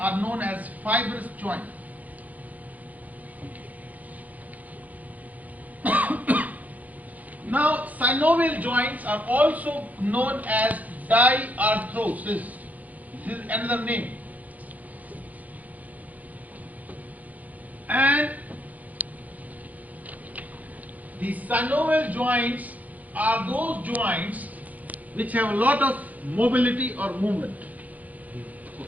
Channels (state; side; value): late; left; 0.078 ms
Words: known as fibrous joints. Now, synovial joints are also known as diarthrosis. This is another name. And the synovial joints are those joints which have a lot of mobility or movement.